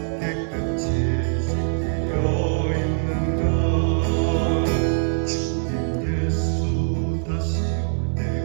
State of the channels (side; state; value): left; silent; digital silence